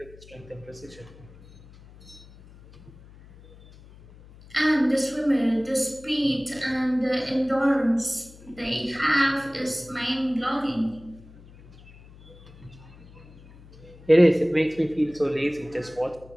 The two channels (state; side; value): noise; left; hum, 22 dB below the sound